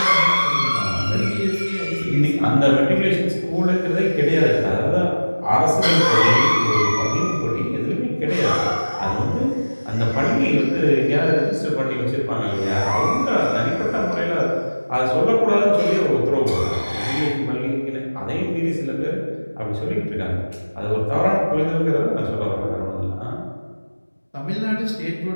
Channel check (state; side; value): inverted; both; correlation -1.00